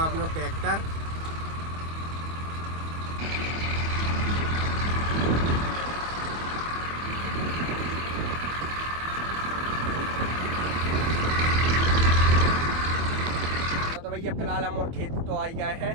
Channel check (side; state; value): left; late; 24 ms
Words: हूँ अपना ट्रैक्टर। तो भैया फिलहाल हम और खेत तो आ गए